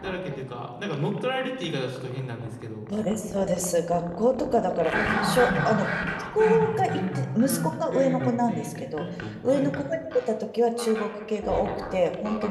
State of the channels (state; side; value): identical; both; correlation 1.00